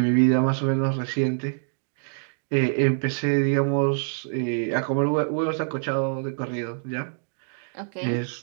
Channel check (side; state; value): left; silent; digital silence